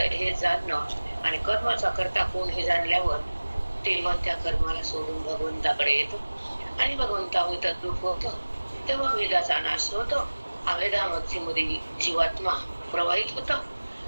हे जाणणं आणि कर्माचा कर्ता कोण हे जाणल्यावर ते मन त्या कर्माला सोडून भगवंताकडे येतो आणि भगवंतामध्ये तद्रूप होतो. तेव्हा वेदाचा नाश होतो. अवेदामध्ये जीवात्मा प्रवाहित होतो,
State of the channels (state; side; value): inverted; both; correlation -1.00